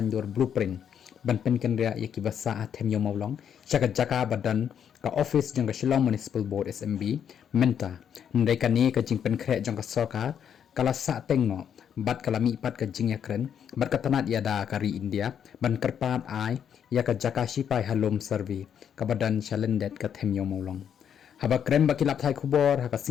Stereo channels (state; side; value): quieter; right; 8.5 dB